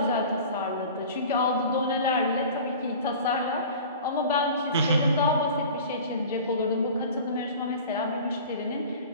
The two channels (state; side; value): inverted; both; correlation -0.40